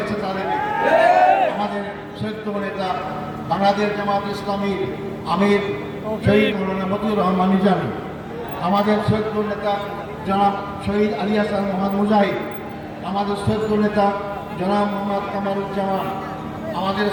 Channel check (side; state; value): both; identical; correlation 1.00